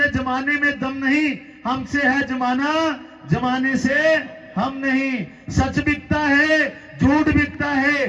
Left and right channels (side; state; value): both; identical; correlation 1.00